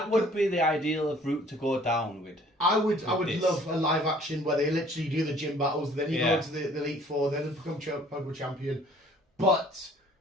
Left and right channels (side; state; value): both; normal; correlation 0.55